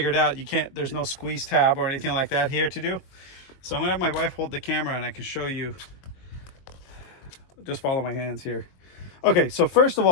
out you can't, there's no squeeze tab or anything like that here to do. So I'm gonna have my wife hold the camera and I can show you. Just follow my hands here. Okay, so first of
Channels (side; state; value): right; late; 22 ms